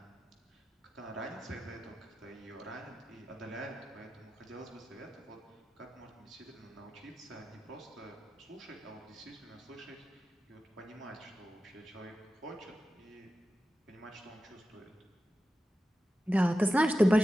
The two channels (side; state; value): both; normal; correlation 0.92